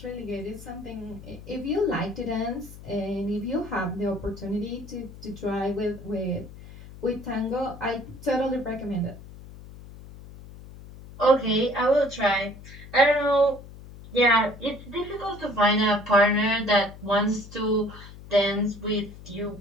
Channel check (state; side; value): noise; left; hum, 16 dB below the sound